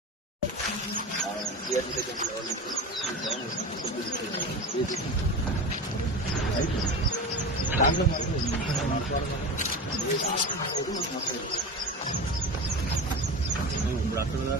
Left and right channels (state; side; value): normal; both; correlation 0.28